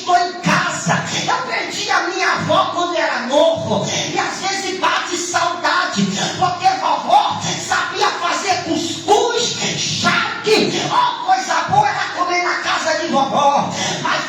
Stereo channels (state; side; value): identical; both; correlation 1.00